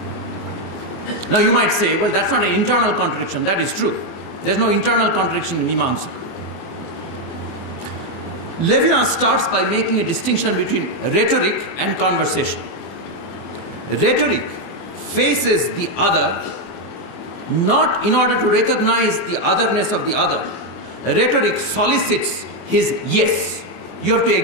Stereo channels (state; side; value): late; right; 24 ms